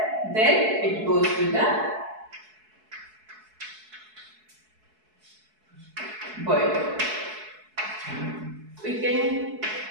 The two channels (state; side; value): late; left; 4.7 ms